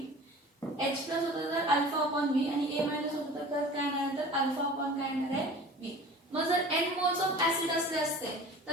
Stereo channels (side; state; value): both; normal; correlation 0.41